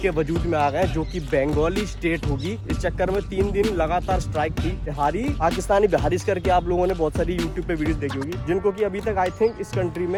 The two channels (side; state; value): both; identical; correlation 1.00